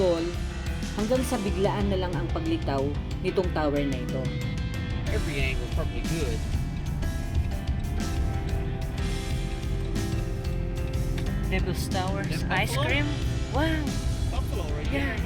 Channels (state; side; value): identical; both; correlation 1.00